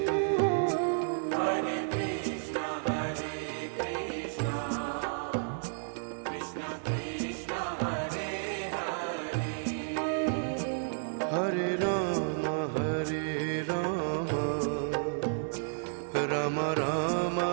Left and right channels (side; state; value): left; silent; digital silence